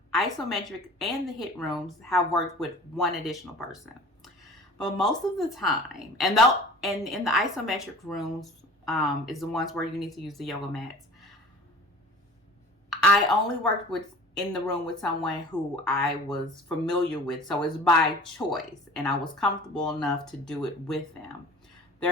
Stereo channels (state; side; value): normal; both; correlation 0.43